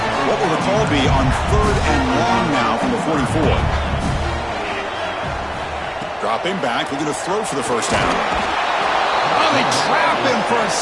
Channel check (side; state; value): both; identical; correlation 1.00